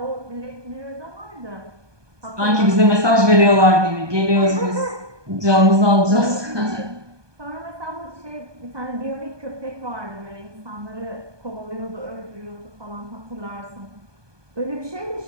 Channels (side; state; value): left; late; 1.2 ms